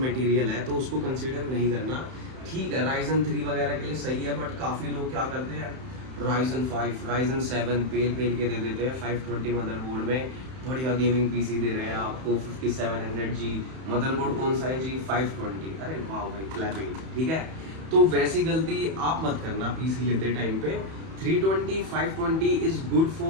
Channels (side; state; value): left; late; 31 ms